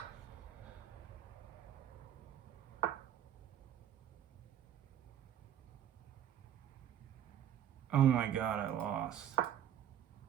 Oh my god, I lost.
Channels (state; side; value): quieter; left; 10.3 dB